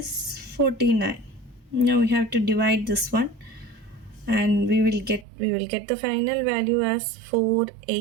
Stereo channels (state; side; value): drops out; left; at 5.2 s